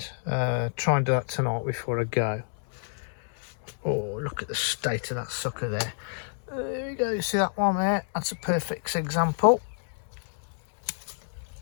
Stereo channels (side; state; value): right; silent; digital silence